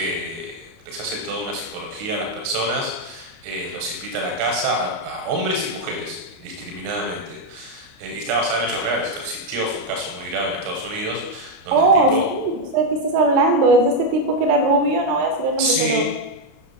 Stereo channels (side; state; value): left; late; 29 ms